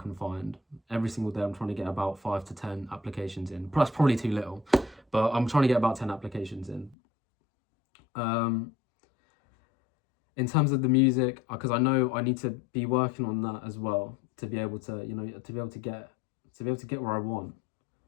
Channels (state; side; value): drops out; right; at 7.0 s